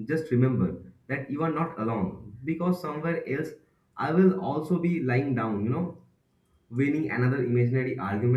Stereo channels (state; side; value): identical; both; correlation 1.00